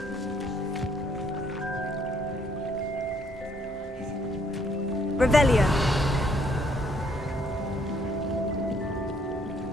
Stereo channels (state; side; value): normal; both; correlation 0.67